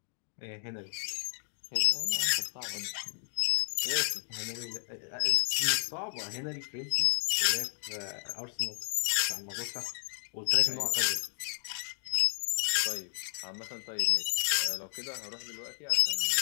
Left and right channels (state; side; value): silent; right; digital silence